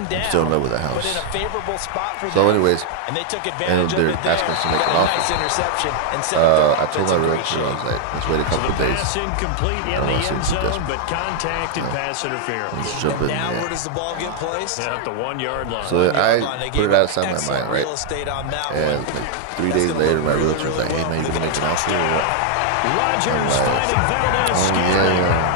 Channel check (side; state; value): both; different; correlation 0.00